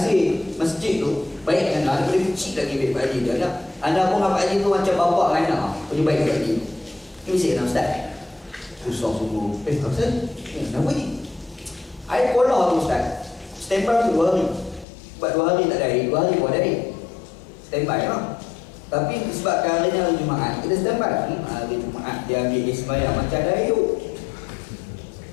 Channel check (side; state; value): right; drops out; at 14.9 s